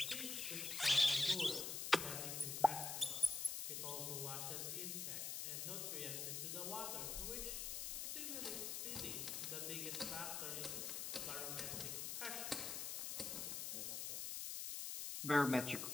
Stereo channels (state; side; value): noise; left; hiss, 2 dB below the sound